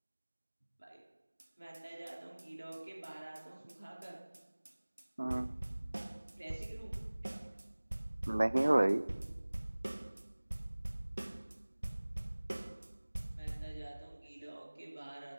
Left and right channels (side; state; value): both; inverted; correlation -1.00